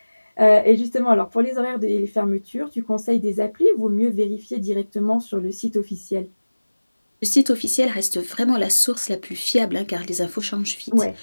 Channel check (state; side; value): inverted; both; correlation -1.00